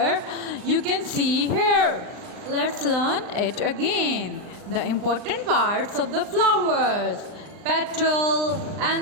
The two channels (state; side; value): late; left; 39 ms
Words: You can see here. Let's learn it again. The important parts of the flowers: petal,